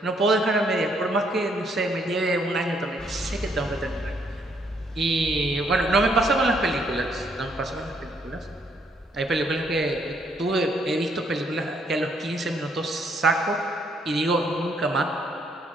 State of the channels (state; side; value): normal; both; correlation 0.70